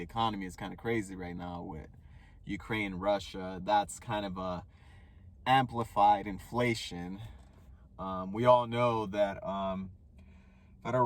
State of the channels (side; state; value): both; identical; correlation 1.00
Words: economy is kind of crazy right now with Ukraine, Russia. That's kind of a amplified inflation. We all know that